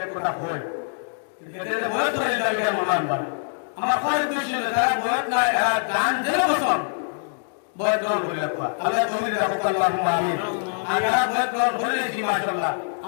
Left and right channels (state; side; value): silent; right; digital silence